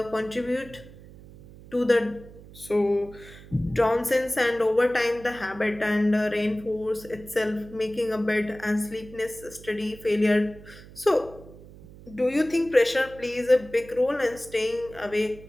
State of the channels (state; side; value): noise; right; hum, 19 dB below the sound